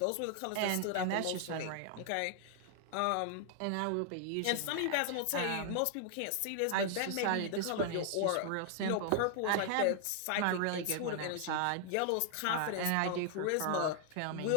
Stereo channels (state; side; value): different; both; correlation 0.00